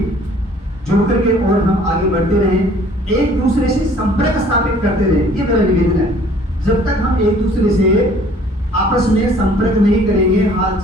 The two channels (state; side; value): normal; both; correlation 0.55